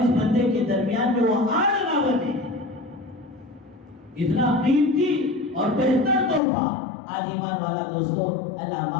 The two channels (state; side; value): drops out; right; at 6.4 s